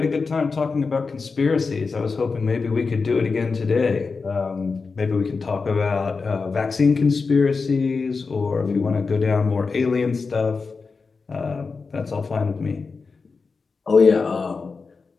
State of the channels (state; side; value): quieter; right; 4.6 dB